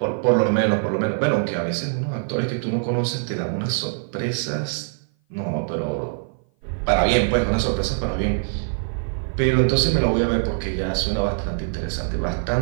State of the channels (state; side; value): silent; left; 56 dB below the other